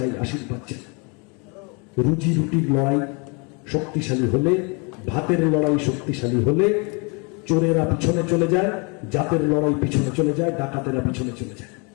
আশীর্বাদ চাই। রুজি রুটির লড়াই শক্তিশালী হলে, ভাতের লড়াই শক্তিশালী হলে চোরেরা পিছনে চলে যায়, জাতের লড়াই পিছনে চলে যায়, ডাকাতেরা পিছনে চলে যায়।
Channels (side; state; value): right; quieter; 32.7 dB